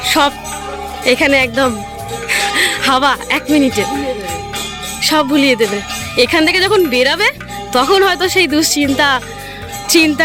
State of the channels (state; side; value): identical; both; correlation 1.00